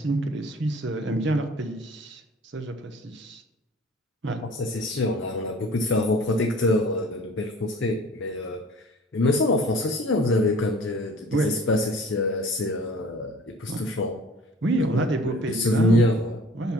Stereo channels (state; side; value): normal; both; correlation 0.48